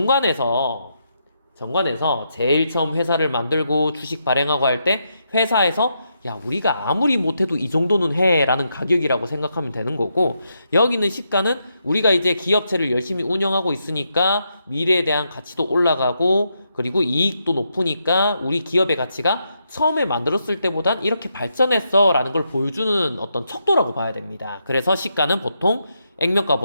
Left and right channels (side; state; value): both; inverted; correlation -0.81